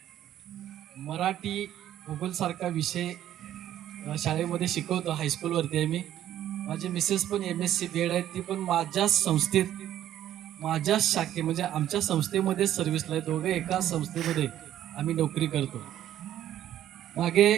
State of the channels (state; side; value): quieter; left; 11.9 dB